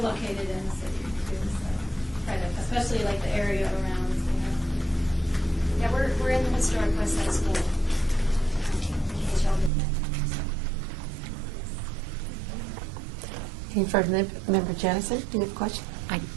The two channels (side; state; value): left; drops out; at 9.7 s